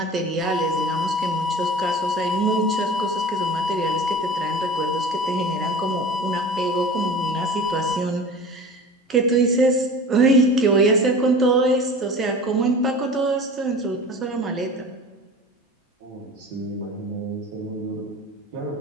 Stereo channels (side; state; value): both; normal; correlation 0.37